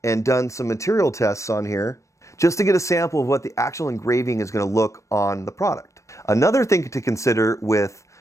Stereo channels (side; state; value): right; late; 0.15 ms